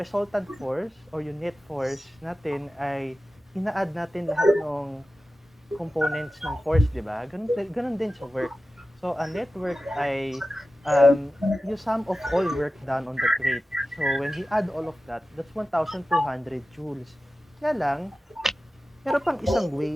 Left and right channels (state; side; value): normal; both; correlation 0.94